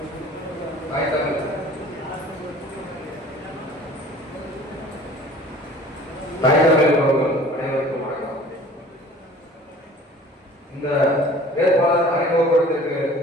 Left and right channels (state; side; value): normal; both; correlation 0.47